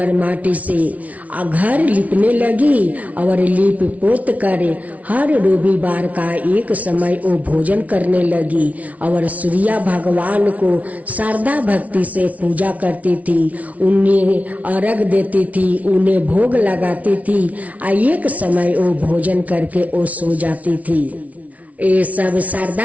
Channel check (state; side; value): late; left; 0.069 ms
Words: माटी से घर लिपने लगी और लिप पोत कर हर रविवार का एक समय वो भोजन करने लगी और सूर्या भगवान को श्रद्धा भक्ति से पूजा करती थी, उन्हें अर्घ देती थी, उन्हें भोग लगाती थी और एक समय वो भोजन करके वो सो जाती थी। ये सब